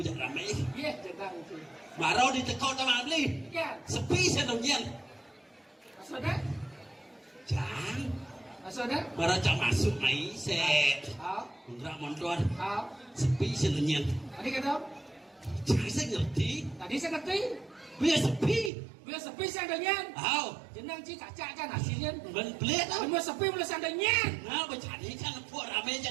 aja rame. Iya, jangan sih. Marau di tekau sama beli. Iya. Sepi sedongnya. Maksudnya? Jangan. Maksudnya? Marau jangan masuk mai set. Oh. Undra montor. Oh. Sepi sedongnya. Tadi kata? Jangan saya ngerti. Tadi saya ngerti. Biar sepi. Biar sepi sandalnya. Oh. Jenang ci cacak kan hasilnya. Ben pelit tau. Biar sepi mulai sandalnya. Nah, bercari kan buat rame aja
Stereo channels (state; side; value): drops out; left; at 18.7 s